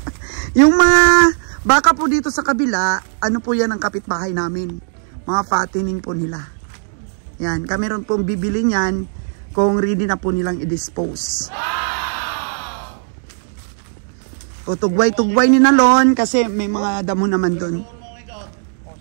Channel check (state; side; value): silent; left; 65 dB below the other